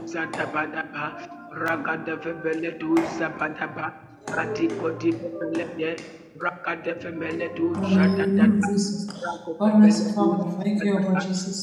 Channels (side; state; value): both; identical; correlation 1.00